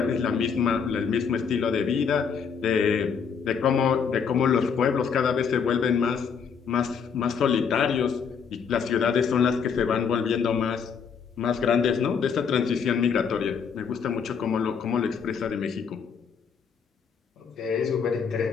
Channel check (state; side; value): quieter; right; 6.5 dB